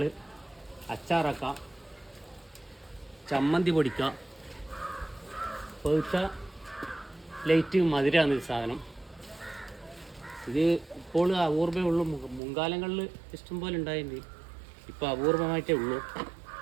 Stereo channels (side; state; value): left; drops out; at 12.4 s